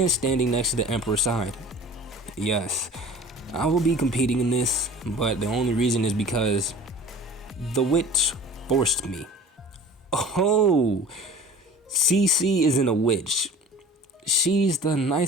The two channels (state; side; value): normal; both; correlation 0.42